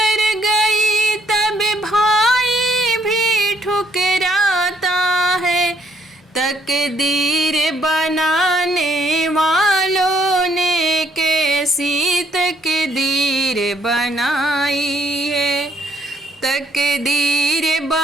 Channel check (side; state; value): both; normal; correlation 0.68